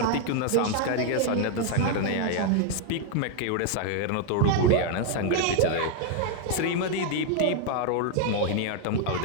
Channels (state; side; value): different; both; correlation 0.01